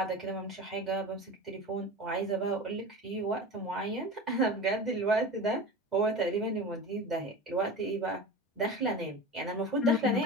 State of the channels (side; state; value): both; normal; correlation 0.31